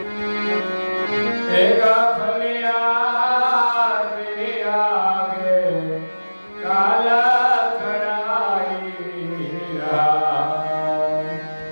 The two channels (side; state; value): both; inverted; correlation -1.00